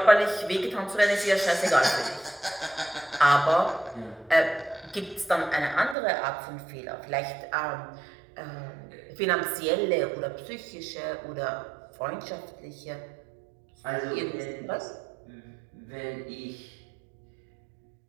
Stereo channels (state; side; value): drops out; left; at 6.0 s